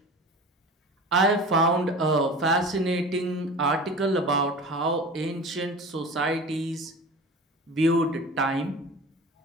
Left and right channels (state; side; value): normal; both; correlation 0.36